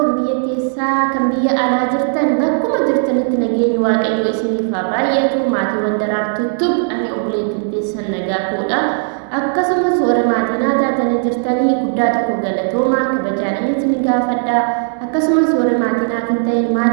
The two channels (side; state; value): left; silent; 69 dB below the other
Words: biyya keessaa kan biyya alaa jirtan bakkuma jirtanitti nageenyi waaqayyo isiniif haa baay'atu. Maatiiwwan daraartuutu ani obboleettiin teessan nagaa koodha. Akkasumas warra maatii naa taatanii jirtanii guddaa tokko galatoomaa kabajaadhaan isin gaafadha. Akkasumas warra maatii naaf hin ta'in